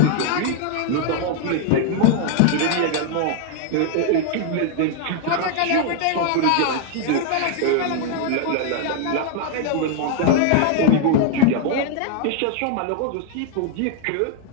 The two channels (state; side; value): different; both; correlation 0.00